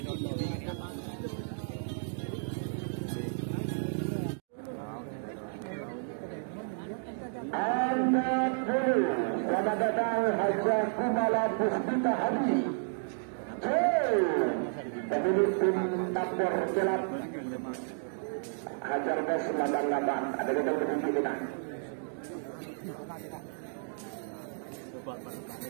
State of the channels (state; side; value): silent; left; digital silence